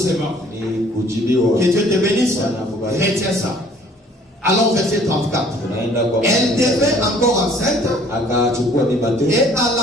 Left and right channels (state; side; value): normal; both; correlation 0.56